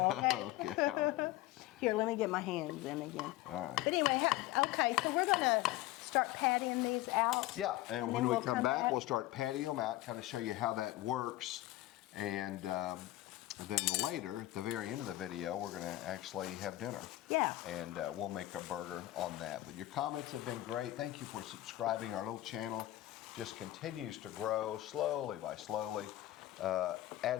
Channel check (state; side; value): quieter; right; 16.4 dB